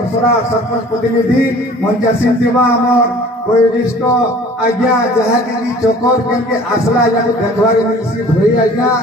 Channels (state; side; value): normal; both; correlation 0.48